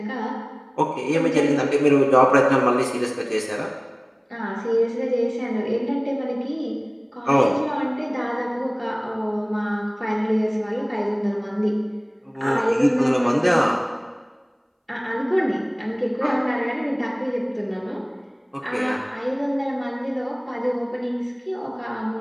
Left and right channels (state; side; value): identical; both; correlation 1.00